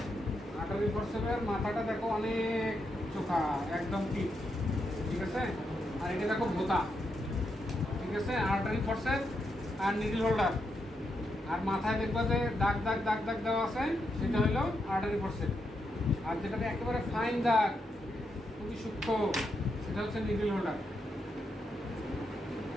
আটারি ফোর্সের মাথাটা দেখো অনেক চোখা, একদম ঠিক আছে। আর এটা দেখো ভোতা, ঠিক আছে। আটারি ফোর্সের আর নিডল হোল্ডার, আর মাথায় দেখবা যে দাগ দাগ দাগ দাগ দেওয়া আছে, সেটা হলো আটারি ফোর্সের। আর যেটাতে একেবারে ফাইন দাগ, খুবই সূক্ষ্ম, সেটা হচ্ছে নিডল হোল্ডার।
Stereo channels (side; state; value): both; normal; correlation 0.82